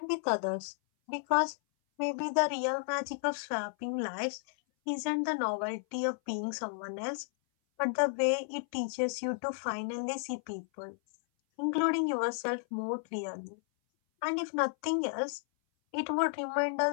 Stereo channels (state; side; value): silent; right; 56 dB below the other